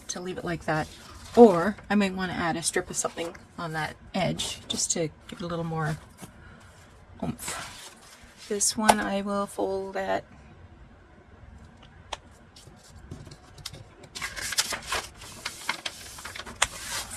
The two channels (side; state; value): both; identical; correlation 1.00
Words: to leave it like that. Or I might want to add a strip of something on that edge just to give it a little more oomph. This one I will fold at